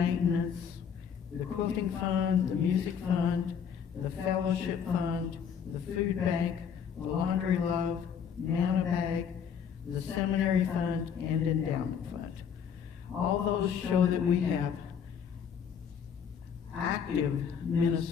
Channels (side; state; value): right; quieter; 7.4 dB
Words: the quilting fund, the music fund, the fellowship fund, the food bank, the laundry love, Nana bag, the seminary fund, and endowment fund. All those show that we have active